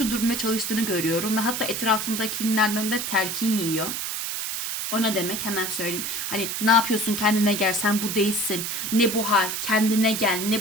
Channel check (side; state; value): right; noise; hiss, 3 dB below the sound